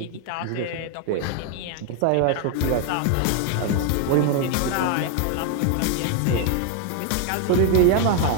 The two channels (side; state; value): both; different; correlation 0.01